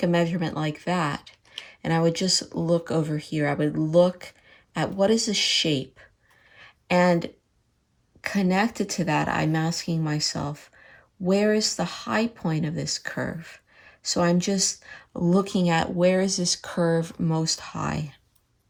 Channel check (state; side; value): identical; both; correlation 1.00